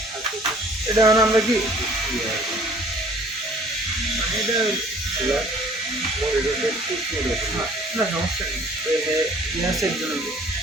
এটা মানে আমরা কি এটা না সমস্যা নেই, ইয়াসের জন্য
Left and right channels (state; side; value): normal; both; correlation 0.54